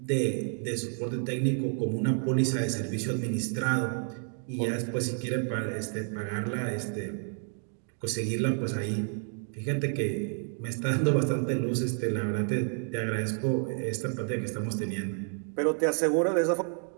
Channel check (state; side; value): silent; left; 55 dB below the other